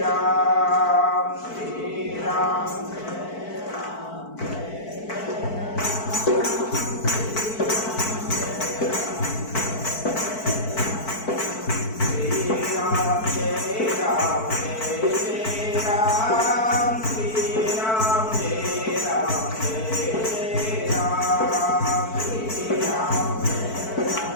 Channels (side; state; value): right; late; 4.5 ms